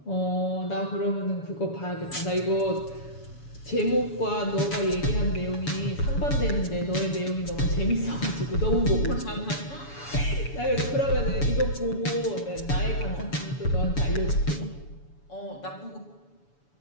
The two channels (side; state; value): right; late; 7.1 ms